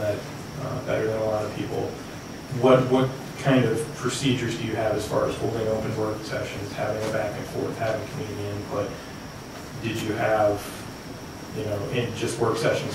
better than a lot of people. What kind of procedures do you have as far as holding open work sessions, having a back and forth, having community input? Did you have, you know, in just work sessions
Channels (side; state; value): both; identical; correlation 1.00